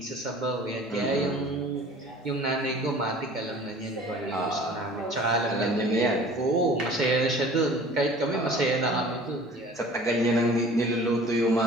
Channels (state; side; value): normal; both; correlation 0.47